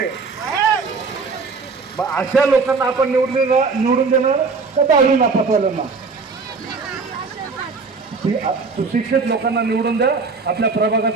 मग अशा लोकांना आपण निवडून देणार का दहावी नापासवाल्यांना? सुशिक्षित लोकांना निवडून द्या. आपल्या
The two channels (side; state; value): left; quieter; 4.5 dB